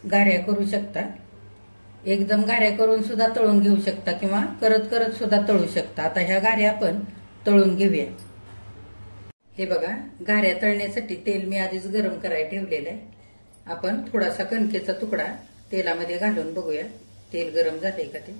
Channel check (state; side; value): inverted; both; correlation -1.00